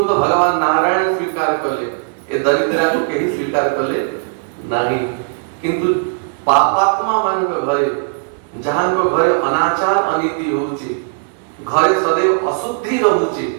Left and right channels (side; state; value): left; silent; digital silence